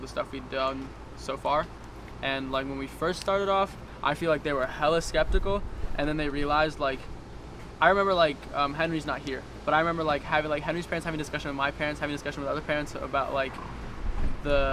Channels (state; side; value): identical; both; correlation 1.00